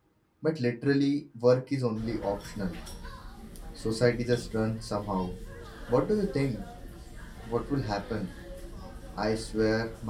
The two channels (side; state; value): both; identical; correlation 1.00